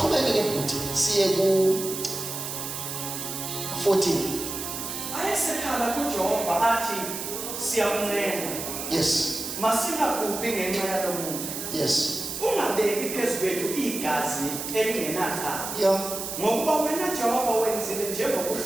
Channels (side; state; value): right; noise; hiss, 6 dB below the sound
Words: bhuti siye ku 14. Ayesekhala kuJehova athi siyamncenga. Yes. Masingagubi ngenxa yalo muntu. Yes. Ungabeki phezu kwethu igazi elingenacala. Yeah. Ngokuba wena Jehova wenzile